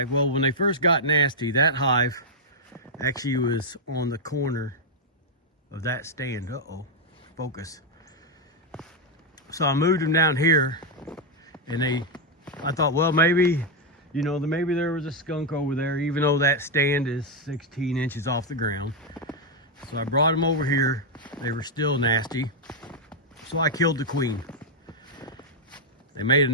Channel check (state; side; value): normal; both; correlation 0.00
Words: well, when they first got nasty, that hive actually was on the corner of that stand. Uh-oh, focus. So I moved them down here, and I thought, well, maybe, maybe there was a skunk over there, even though that stand is 16 inches off the ground. So I brought them over here. They were still nasty. So I killed the queen. They made a